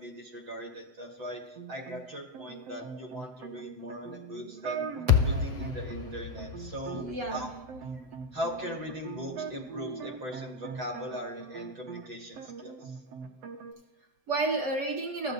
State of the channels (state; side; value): late; left; 7.8 ms